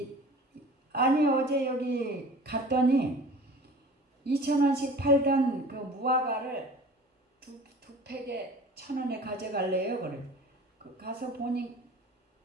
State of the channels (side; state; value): both; normal; correlation 0.43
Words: 아니 어제 여기 갔더니 2,000원씩 팔던 그 무화과를 두 팩에 1,000원에 가져갈래요. 그래. 가서 보니